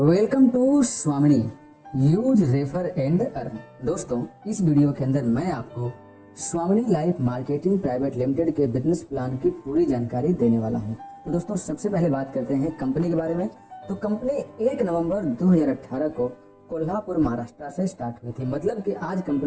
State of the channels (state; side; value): identical; both; correlation 1.00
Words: to स्वामिनी use refer and earn. दोस्तों, इस वीडियो के अंदर मैं आपको स्वामिनी लाइफ मार्केटिंग प्राइवेट लिमिटेड के बिजनेस प्लान की पूरी जानकारी देने वाला हूं। तो दोस्तों, सबसे पहले बात करते हैं कंपनी के बारे में। तो कंपनी 1 नवंबर 2018 को कोल्हापुर महाराष्ट्र से स्टार्ट हुई थी। मतलब कि आज